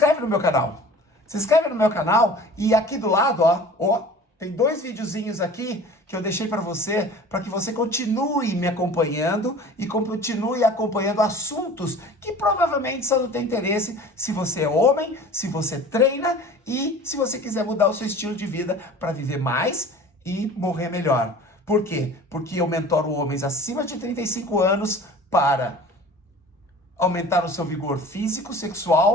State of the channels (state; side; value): normal; both; correlation 0.42